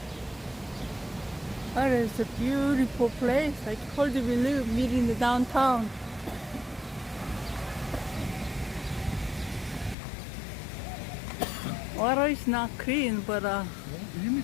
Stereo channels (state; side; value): drops out; right; at 10.0 s